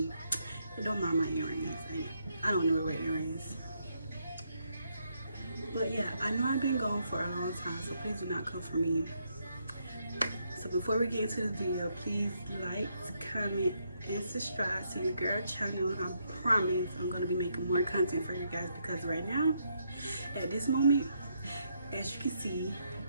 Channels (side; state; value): both; inverted; correlation -0.76